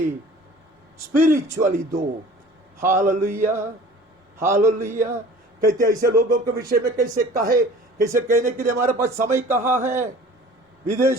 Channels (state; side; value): normal; both; correlation 0.45